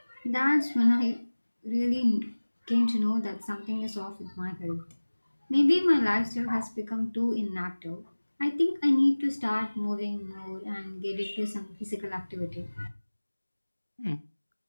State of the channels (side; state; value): both; inverted; correlation -1.00